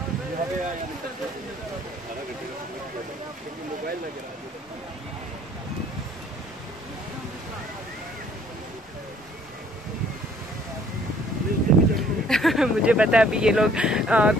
मुझे पता है अभी ये लोग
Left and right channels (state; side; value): normal; both; correlation 0.59